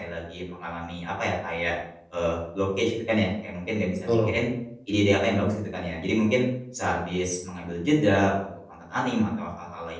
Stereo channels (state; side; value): identical; both; correlation 1.00